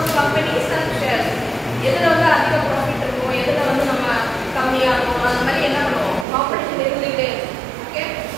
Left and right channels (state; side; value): drops out; left; at 6.2 s